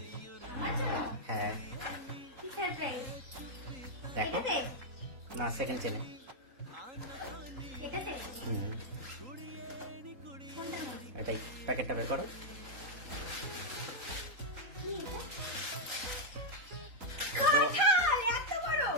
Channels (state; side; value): late; left; 3.8 ms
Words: হ্যাঁ দেখো না, সেকেন্ড চেনে। এটাই, প্যাকেটটা বের করো।